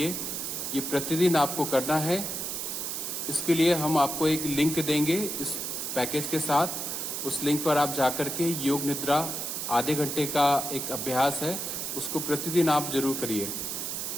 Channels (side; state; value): right; noise; hiss, 3 dB below the sound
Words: ये प्रतिदिन आपको करना है। इसके लिए हम आपको एक लिंक देंगे इस पैकेज के साथ। उस लिंक पर आप जाकर के योग निद्रा आधे घंटे का एक अभ्यास है, उसको प्रतिदिन आप जरूर करिए।